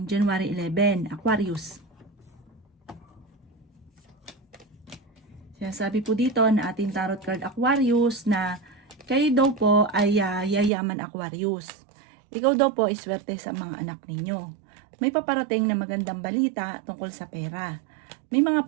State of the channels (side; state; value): left; drops out; at 10.7 s